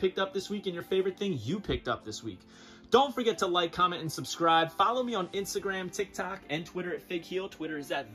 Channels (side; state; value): both; identical; correlation 1.00